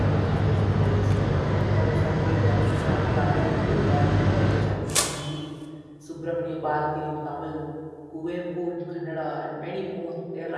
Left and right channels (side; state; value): both; identical; correlation 1.00